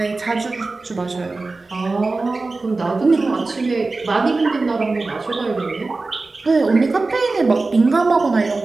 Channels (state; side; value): quieter; left; 3.6 dB